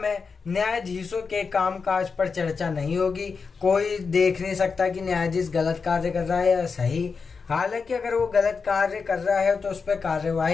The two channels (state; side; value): quieter; right; 5.1 dB